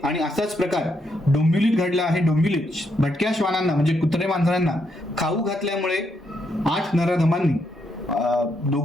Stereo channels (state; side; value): normal; both; correlation 0.77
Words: आणि असाच प्रकार डोंबिवलीत घडला आहे। डोंबिवलीत भटक्या श्वानांना म्हणजे कुत्रे मांजरांना खाऊ घातल्यामुळे 8 नराधमांनी